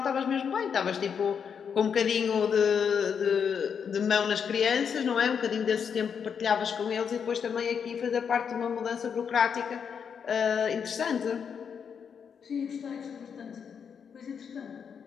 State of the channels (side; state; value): right; quieter; 7.0 dB